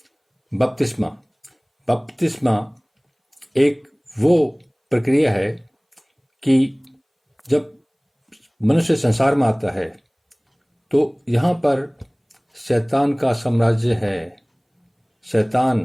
बपतिस्मा। बपतिस्मा एक वो प्रक्रिया है कि जब मनुष्य संसार में आता है तो यहाँ पर शैतान का साम्राज्य है। शैतान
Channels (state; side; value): identical; both; correlation 1.00